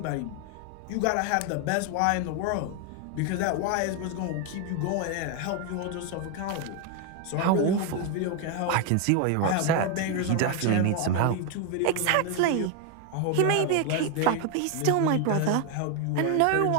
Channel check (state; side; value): different; both; correlation 0.01